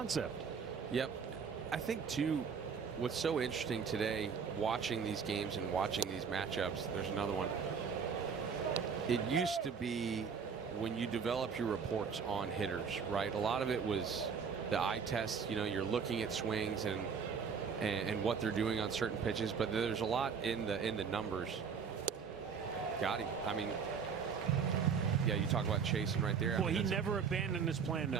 Yep. I think, too, what's so interesting today, watching these games and watching these matchups, there's another one. It used to be when you develop your reports on hitters, right? A lot of it was the eye test. You know, you're looking at swings and what they're doing on certain pitches, but there's a lot in the numbers. Got him. I mean, yeah, you talk about chasing right there. Well, he never abandoned his plan.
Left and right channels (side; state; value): left; quieter; 6.2 dB